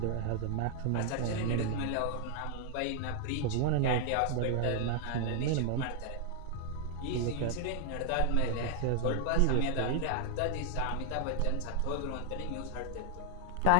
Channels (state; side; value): different; both; correlation 0.00